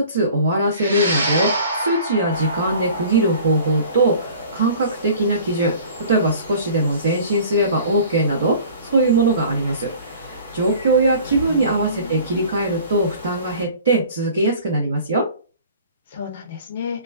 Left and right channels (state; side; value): inverted; both; correlation -0.46